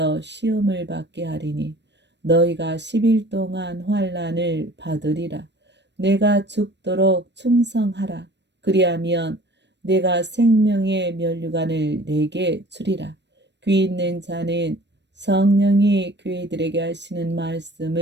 시험을 받게 하리니 너희가 10일 동안 환난을 받으리라. 내가 죽도록 충성하라. 그리하면 내가 생명의 면류관을 내게 주리라. 귀 있는 자는 성령이 교회들에게 하시는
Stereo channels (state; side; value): late; left; 0.51 ms